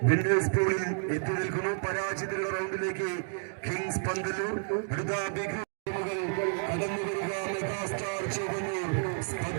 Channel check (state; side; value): silent; left; 57 dB below the other